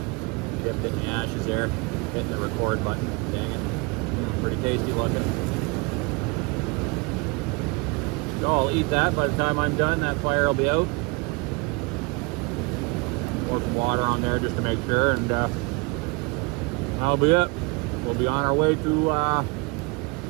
Dipped it in the ashes there. Hitting the record button. Dang it. Pretty tasty looking. So I'll eat that. By the time I'm done, that fire will be out. Pour some water on there just to make sure, and that'll be it. We'll be on our way to the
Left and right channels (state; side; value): quieter; left; 28.2 dB